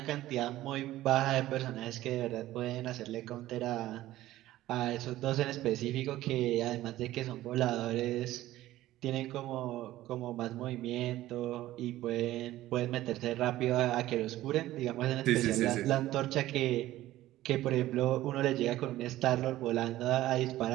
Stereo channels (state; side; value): quieter; left; 15.3 dB